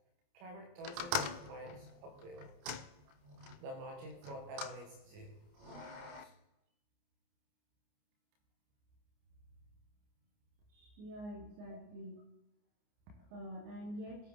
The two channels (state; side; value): late; left; 29 ms